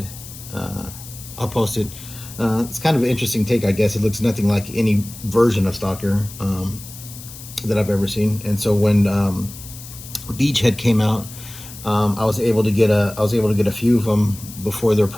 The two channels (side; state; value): left; noise; hiss, 15 dB below the sound